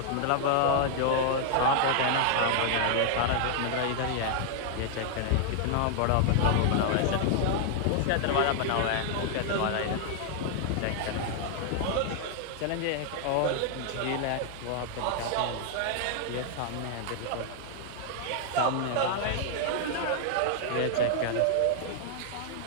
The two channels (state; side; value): different; both; correlation 0.00